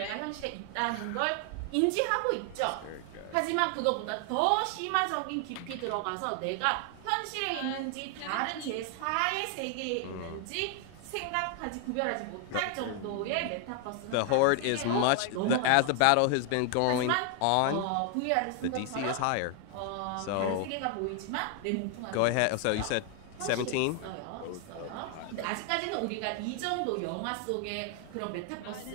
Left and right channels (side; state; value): both; different; correlation 0.00